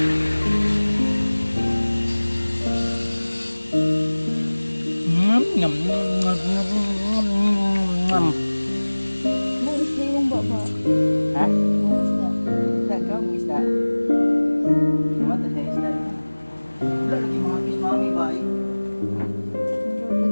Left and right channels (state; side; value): inverted; both; correlation -1.00